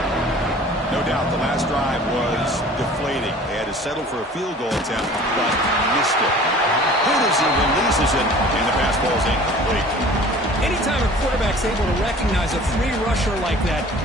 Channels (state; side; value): normal; both; correlation 0.46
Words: No doubt the last drive was deflating. They had to settle for a field goal attempt, but missed it. Hootersy releases it, and the pass ball is incomplete. Anytime a quarterback's able to recognize a free rusher like that,